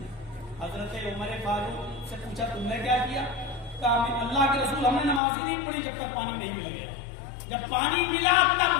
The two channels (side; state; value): right; drops out; at 5.2 s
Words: حضرت عمر فاروق سے پوچھا تم نے کیا کیا؟ کہا اللہ کے رسول ہم نے نماز ہی نہیں پڑھی جب تک پانی نہیں مل گیا، جب پانی ملا